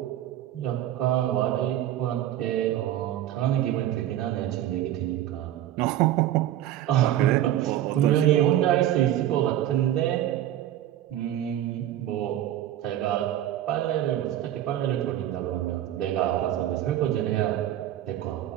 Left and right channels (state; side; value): quieter; left; 12.5 dB